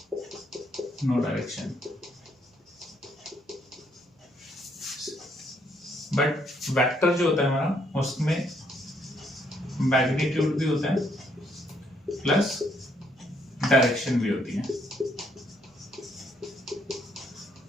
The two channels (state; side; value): normal; both; correlation 0.71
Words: नो डायरेक्शन। बट वेक्टर जो होता है हमारा उसमें मैग्नीट्यूड भी होता है प्लस डायरेक्शन भी होती है।